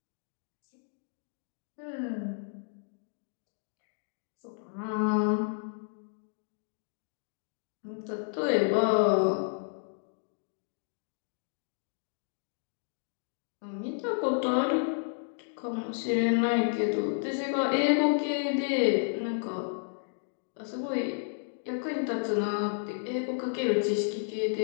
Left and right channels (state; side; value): silent; right; digital silence